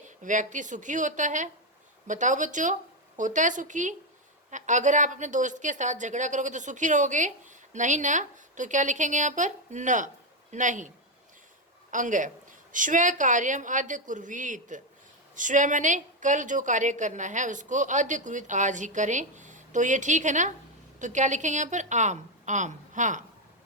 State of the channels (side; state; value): both; normal; correlation 0.05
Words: व्यक्ति सुखी होता है। बताओ बच्चों, होता है सुखी? अगर आप अपने दोस्त के साथ झगड़ा करोगे तो सुखी रहोगे? नहीं ना, तो क्या लिखेंगे यहाँ पर? न, नहीं। अंग, स्व कार्यम अद्य कुर्वीत। स्व मैंने कल जो कार्य करना है उसको, अद्य कुर्वीत आज ही करें। तो ये ठीक है ना, तो क्या लिखेंगे यहाँ पर? आम, आम। हाँ।